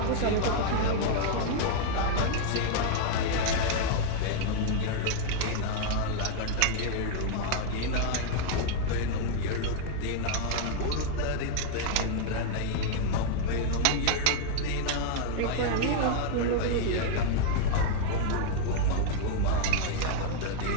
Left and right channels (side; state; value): both; different; correlation 0.00